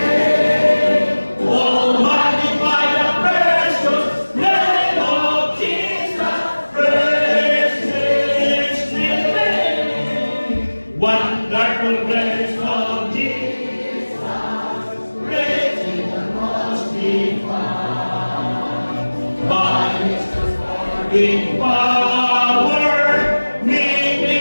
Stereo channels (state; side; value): inverted; both; correlation -1.00